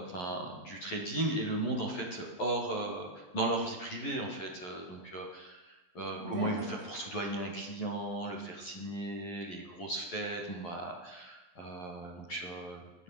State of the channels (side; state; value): right; late; 11 ms